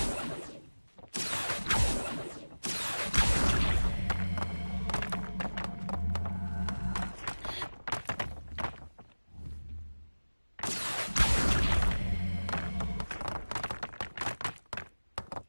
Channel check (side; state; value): both; inverted; correlation -1.00